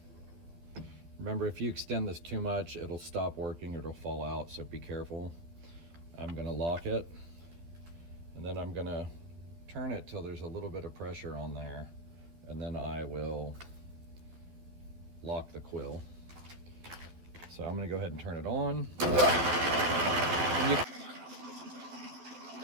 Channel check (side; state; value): left; late; 12 ms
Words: Remember, if you extend this too much, it'll stop working or it'll fall out, so be careful. I'm gonna lock it, and then I'm gonna turn it till there's a little bit of pressure on there, and then I will lock the quill. So I'm gonna go ahead and turn it on.